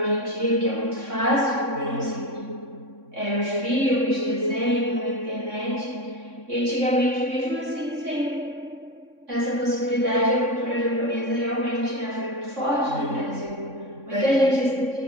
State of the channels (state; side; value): late; left; 3.6 ms